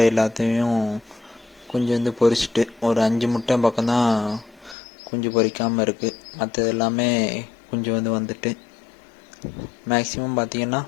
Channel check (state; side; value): drops out; right; at 4.8 s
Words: எல்லாத்தையும் குஞ்சு பொரிச்சிட்டு ஒரு 5 முட்டை பக்கம்தான் குஞ்சு பொரிக்காமல் இருக்குது. மற்றது எல்லாமே குஞ்சு வந்துட்டு மேக்ஸிமம் பார்த்திங்கன்னா